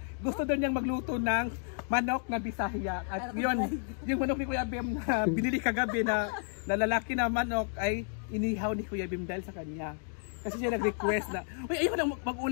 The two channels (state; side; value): silent; right; 57 dB below the other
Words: gusto doon niyang magluto ng manok na Bisaya. At yun, yung manok ni Kuya Bem na binili kagabi na lalaki na manok ay inihaw ni Kuya Bem dahil sa kanya. Kasi siya nag-request na, uy, ayun lang